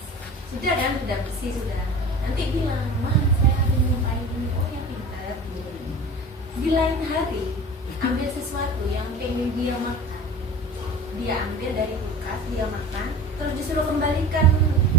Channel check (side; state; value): both; normal; correlation 0.37